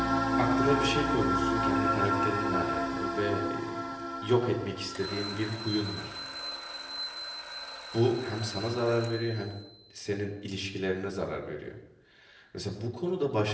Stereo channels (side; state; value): both; identical; correlation 1.00